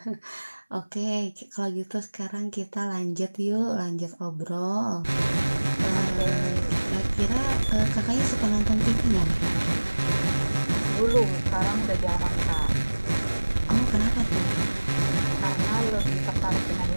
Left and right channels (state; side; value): inverted; both; correlation -1.00